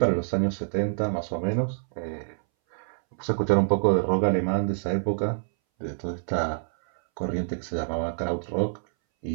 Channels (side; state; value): left; silent; 60 dB below the other